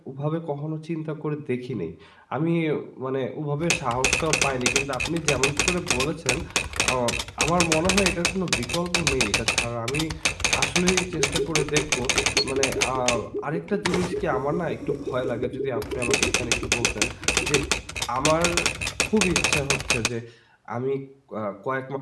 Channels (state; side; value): identical; both; correlation 1.00